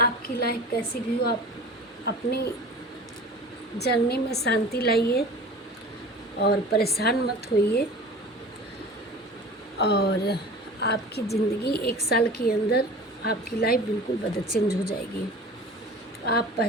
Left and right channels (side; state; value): both; normal; correlation 0.39